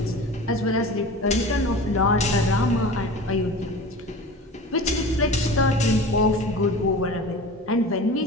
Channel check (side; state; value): both; normal; correlation 0.36